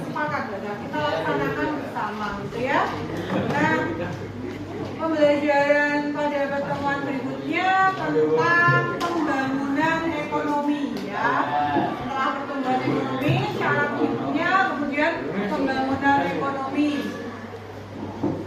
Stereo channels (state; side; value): identical; both; correlation 1.00